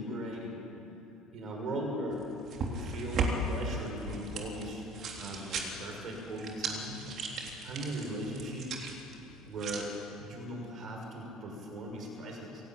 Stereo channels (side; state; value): both; normal; correlation 0.48